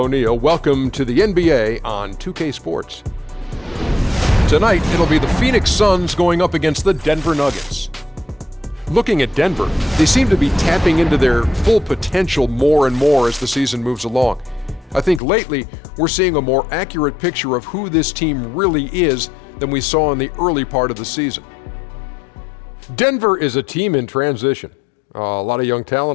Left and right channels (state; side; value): drops out; right; at 15.2 s